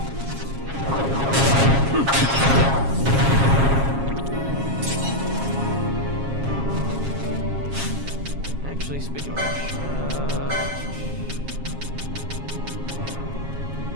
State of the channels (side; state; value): left; late; 7.4 ms